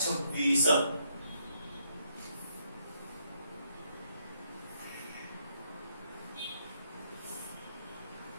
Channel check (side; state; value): both; inverted; correlation -0.74